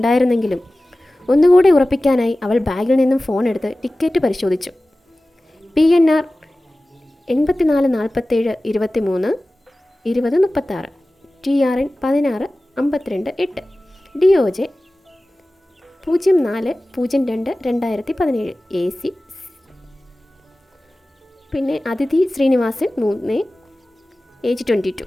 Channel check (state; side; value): normal; both; correlation 0.97